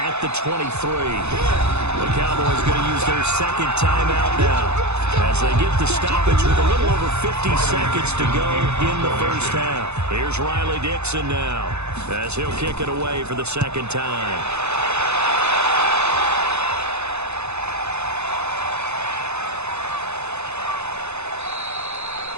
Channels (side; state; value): left; late; 0.81 ms